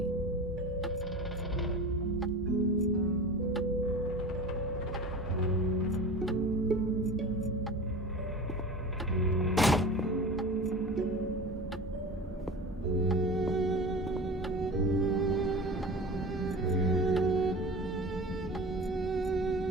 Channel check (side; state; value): both; normal; correlation 0.34